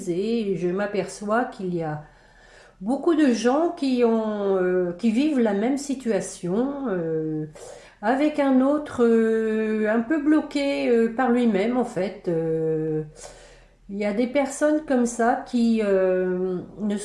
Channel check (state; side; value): identical; both; correlation 1.00